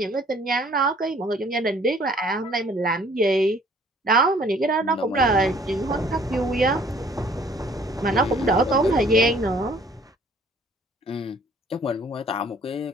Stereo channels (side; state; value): both; normal; correlation 0.57